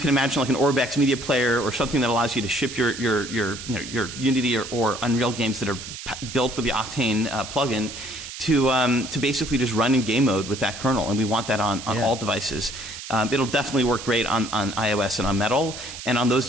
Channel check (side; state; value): right; noise; hiss, 11 dB below the sound